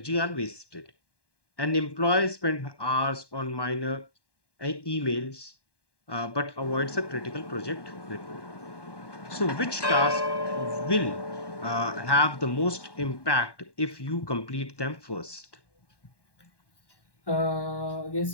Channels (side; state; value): right; late; 1.1 ms